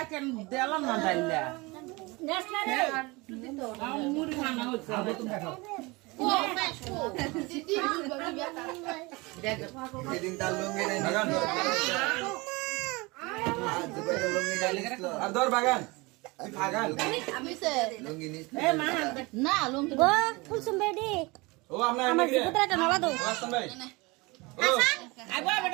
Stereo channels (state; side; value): quieter; left; 24.7 dB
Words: কেন দিলাম না ডাইলা নেসলা রে মুড়ি খানা হচ্ছে এদিন তার লুঙ্গি নাই আর ধর বাগান তুই বাগান লুঙ্গি নিস এ মা না লুঙ্গি গো ফুলসুম বেডি ও আপনার আমার জিপুতরাটা নলা দাও আসতাম ভাই ও আইবা